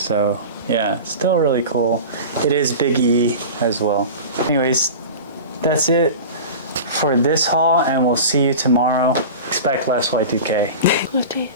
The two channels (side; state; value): both; inverted; correlation -0.32